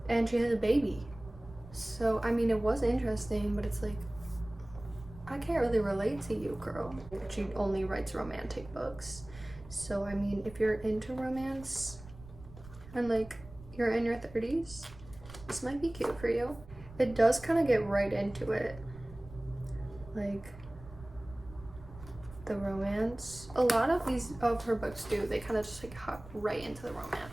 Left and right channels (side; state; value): right; noise; rumble, 17 dB below the sound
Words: and she has a baby. So, I mean, it was interesting, but it's like, I can't really relate to you, girl. She only writes romantic books. So, I mean, if you're into romance and like you're in your 30s, this might be cute for you. It does kind of get right into it. Like, the romance. A lot of her books do. They kind of just like hop right into the